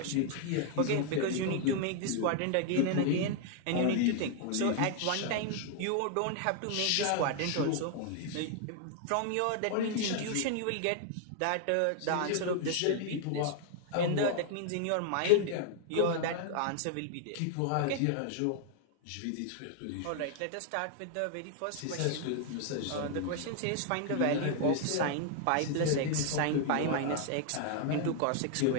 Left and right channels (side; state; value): both; different; correlation 0.00